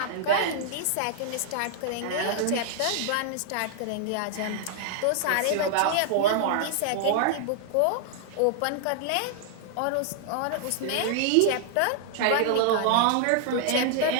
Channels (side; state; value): both; different; correlation 0.00